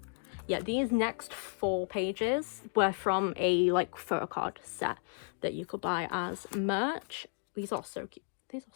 Yeah, these next 4 pages were from a like photo card set that you could buy as merch. These are so cute. These are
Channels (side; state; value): right; silent; digital silence